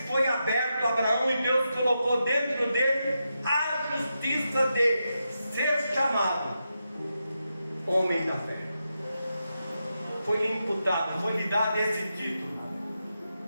foi aberto a Abraão e Deus colocou dentro dele a justiça de ser chamado homem da fé. Foi imputado, foi lhe dado esse título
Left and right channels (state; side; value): inverted; both; correlation -0.87